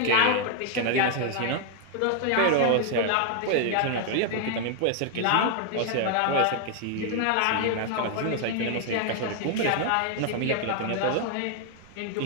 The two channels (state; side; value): different; both; correlation 0.00